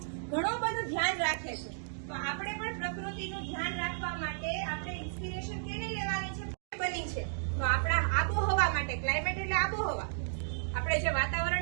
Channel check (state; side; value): silent; left; digital silence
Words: ઘણું બધું ધ્યાન રાખે છે. તો આપણે પણ પ્રકૃતિનું ધ્યાન રાખવા માટે આપણે ઇન્સ્પિરેશન કેની લેવાની છે? બની છે તો આપણા આબોહવા માટે. ક્લાઇમેટ એટલે આબોહવા. આપણે જે